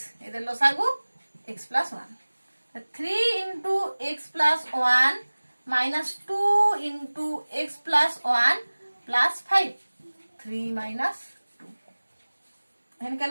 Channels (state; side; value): inverted; both; correlation -1.00